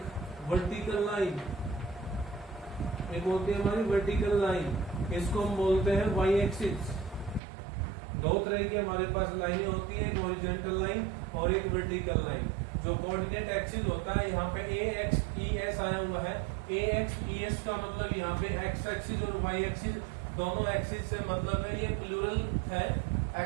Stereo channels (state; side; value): drops out; left; at 7.4 s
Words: वर्टिकल लाइन, एक होती है हमारी वर्टिकल लाइन, इसको हम बोलते हैं वाई एक्सिस। दो तरह की हमारे पास लाइनें होती है, एक हॉरिजॉन्टल लाइन और एक वर्टिकल लाइन। जो कोऑर्डिनेट एक्सिस होता है, यहाँ पे ए एक्स ई एस आया हुआ है। ए एक्स ई एस का मतलब यहाँ पे एक्स एक्सिस और वाई एक्सिस दोनों एक्सिस से मतलब है, ये प्लूरल है।